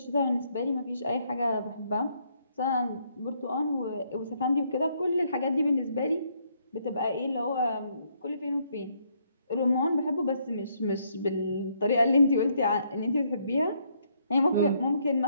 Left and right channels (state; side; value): inverted; both; correlation -0.72